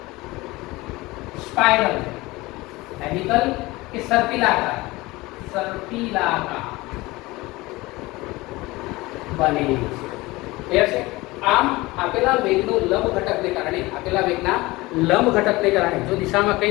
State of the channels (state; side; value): quieter; right; 21.0 dB